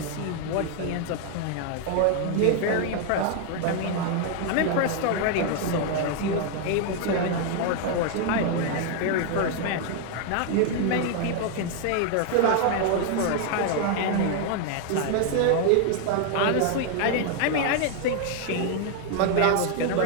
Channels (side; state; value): both; different; correlation 0.00